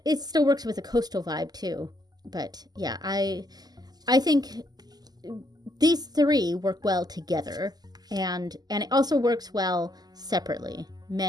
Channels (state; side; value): late; left; 0.20 ms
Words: still works with a coastal vibe too. But yeah, I think these three work well together, and it also works well separately.